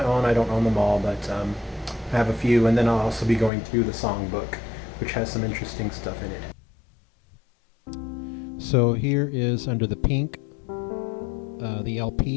own. I don't own them all, but I have a few, and then I'll also be going through the songbook, which has some interesting stuff in it. So here is Under the Pink, the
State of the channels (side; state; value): right; drops out; at 3.5 s